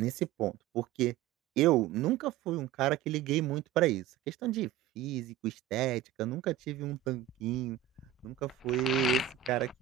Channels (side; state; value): left; quieter; 10.8 dB